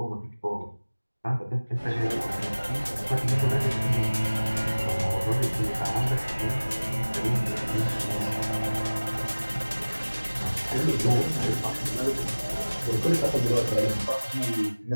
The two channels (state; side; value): inverted; both; correlation -1.00